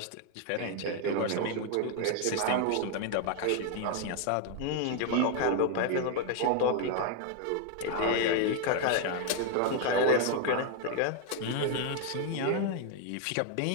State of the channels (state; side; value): different; both; correlation 0.00